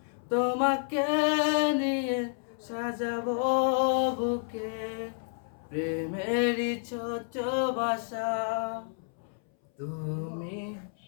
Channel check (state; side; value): silent; right; 58 dB below the other